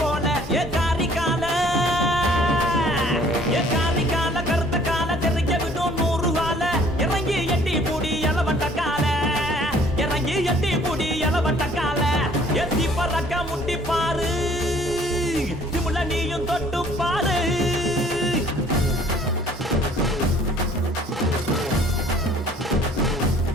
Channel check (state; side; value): normal; both; correlation 0.56